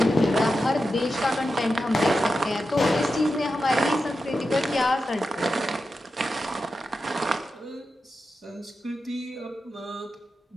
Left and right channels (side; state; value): both; normal; correlation 0.90